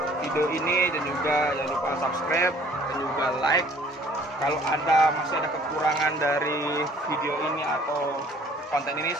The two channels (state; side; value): normal; both; correlation 0.55